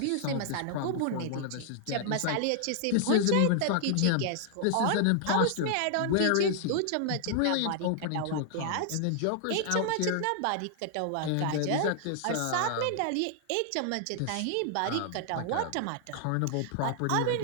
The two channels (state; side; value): different; both; correlation -0.01